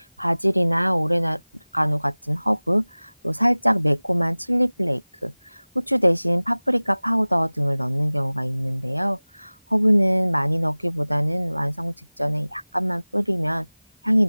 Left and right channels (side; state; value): both; inverted; correlation -1.00